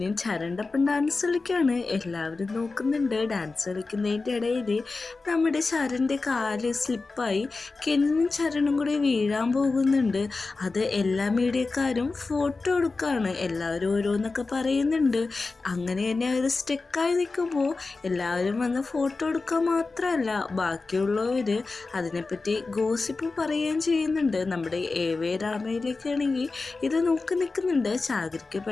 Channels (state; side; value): quieter; right; 3.8 dB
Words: ചരണിൻ്റെ ഒപ്പം ഡാൻസ് കളിക്കുകയാണ്. എല്ലാവരും നോക്കുന്നുണ്ട്. ഡാൻസ് കളിക്കുന്നതിൻ്റെ ഇടയിൽ നമ്മുടെ ചരണിൻ്റെ കാല് സ്ലിപ്പായി കെനിനും ചരണും കൂടി വീഴാൻ പോകുന്നുണ്ട്. അത് എല്ലാ മീഡിയക്കാരും ഫോട്ടോ എടുക്കുകയാണ്. എല്ലാവരും ഓരോന്നൊക്കെ പറയുന്നുണ്ട്. അങ്ങനെ തന്നെ അവർ സ്റ്റെക്കായി നിൽക്കുമ്പോൾ എല്ലാവരും വന്ന് ഫോട്ടോ എടുക്കുക മാത്രമല്ല, ബാക്കിയുള്ളവർ അതിനെപ്പറ്റി ഗോസിപ്പ് പറയുകയും ചെയ്യുന്നുണ്ട്. നമ്മുടെ എവേ രാമയിലേക്കാണെങ്കിൽ ഇത് നോക്കി നിൽക്കുന്നുണ്ട്. ചാഗരിക്ക്